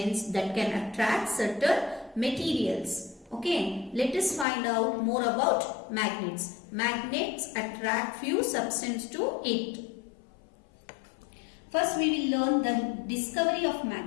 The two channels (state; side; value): drops out; right; at 4.5 s